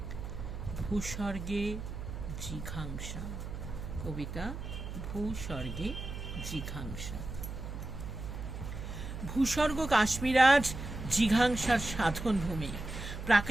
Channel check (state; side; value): noise; right; hum, 8 dB below the sound